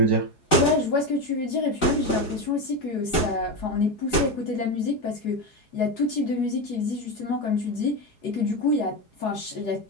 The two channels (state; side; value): late; right; 4.8 ms